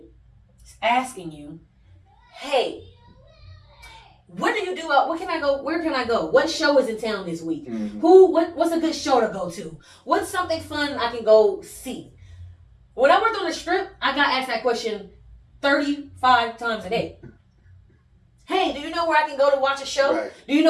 asking you, hey, what do you do? What can I go? Where can I go? What show is in town this week? Mm-hmm. What's a good show to go to? What's something fun I can go see? When I worked on the Strip, I got asked that question 35 times a day. Hey, do you know where I can go to watch a show? Right. Do you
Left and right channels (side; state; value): both; identical; correlation 1.00